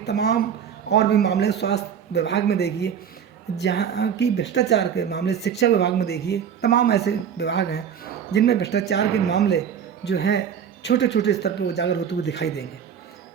और भी मामले स्वास्थ्य विभाग में देखिए, जहाँ की भ्रष्टाचार के मामले शिक्षा विभाग में देखिए, तमाम ऐसे विभाग हैं जिनमें भ्रष्टाचार के मामले जो हैं छोटे छोटे स्तर पर उजागर होते हुए दिखाई देंगे।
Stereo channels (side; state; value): left; quieter; 8.1 dB